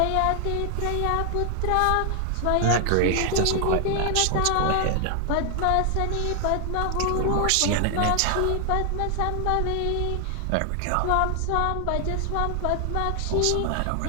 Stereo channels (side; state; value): both; different; correlation 0.00